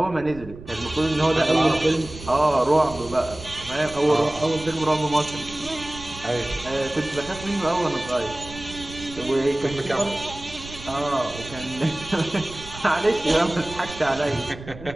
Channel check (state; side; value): noise; right; rumble, 15 dB below the sound